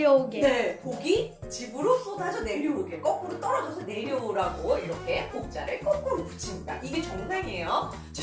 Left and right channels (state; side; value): identical; both; correlation 1.00